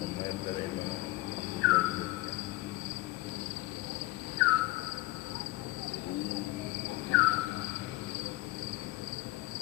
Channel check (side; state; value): right; quieter; 19.1 dB